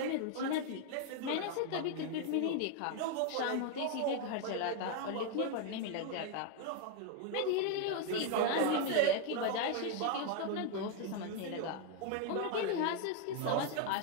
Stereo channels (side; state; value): both; different; correlation 0.01